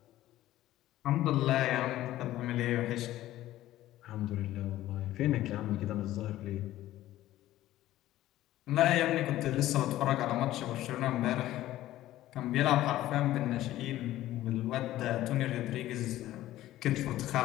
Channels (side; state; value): right; quieter; 14.6 dB